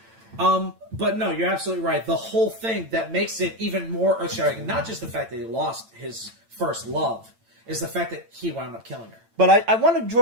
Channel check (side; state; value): left; late; 8.9 ms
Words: But no, you're absolutely right. The whole thing that makes it even more earth-shattering, not just the fact that he lost his first love, is the fact that he wound up killing her. But I want to